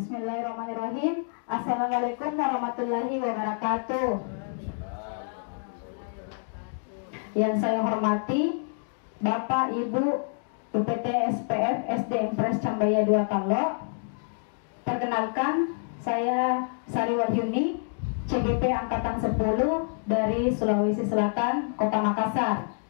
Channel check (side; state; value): right; silent; 59 dB below the other